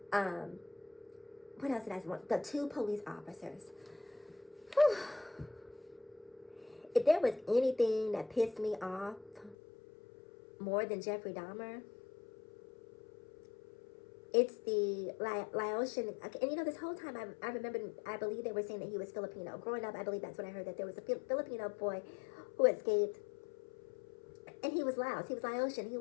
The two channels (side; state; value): right; drops out; at 9.6 s